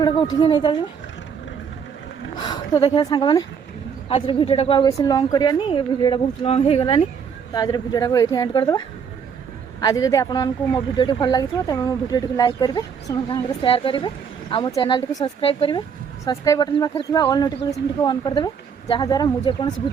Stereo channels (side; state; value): left; quieter; 6.8 dB